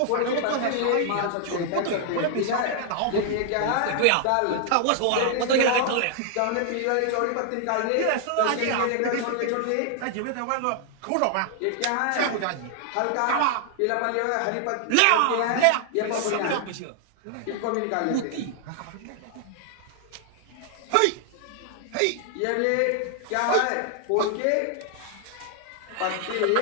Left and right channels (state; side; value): different; both; correlation 0.00